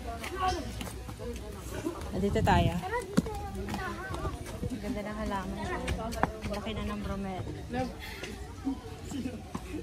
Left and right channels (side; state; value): both; identical; correlation 1.00